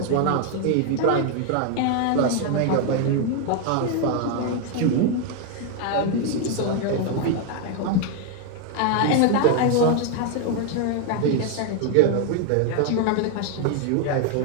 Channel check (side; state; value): both; different; correlation 0.01